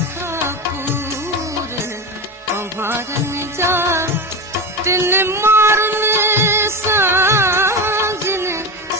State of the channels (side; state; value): both; normal; correlation 0.20